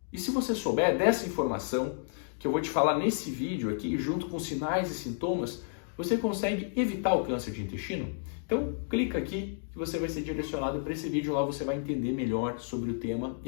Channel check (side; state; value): right; silent; digital silence